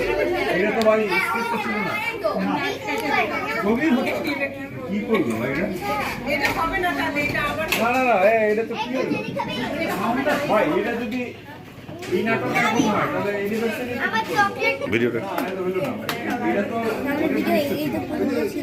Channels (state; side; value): identical; both; correlation 1.00